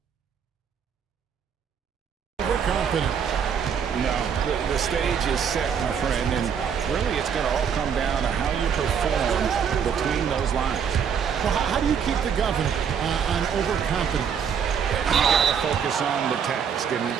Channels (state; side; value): quieter; left; 7.4 dB